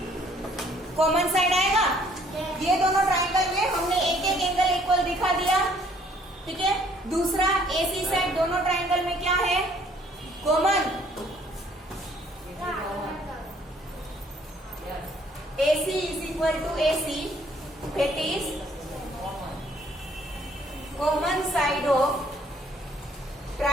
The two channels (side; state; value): both; normal; correlation 0.62